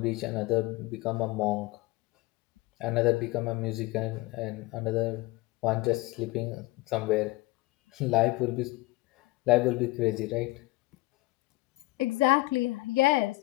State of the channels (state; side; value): quieter; right; 20.5 dB